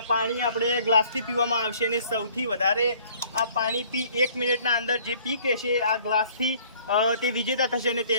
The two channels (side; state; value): both; inverted; correlation -0.56